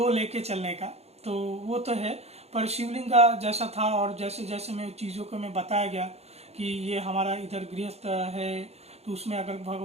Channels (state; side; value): late; left; 0.31 ms